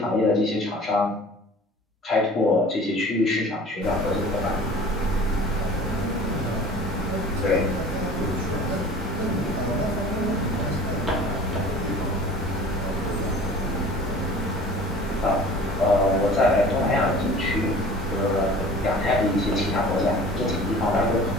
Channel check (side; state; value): both; normal; correlation 0.44